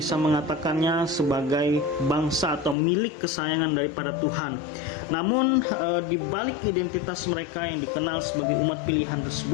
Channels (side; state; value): right; drops out; at 2.8 s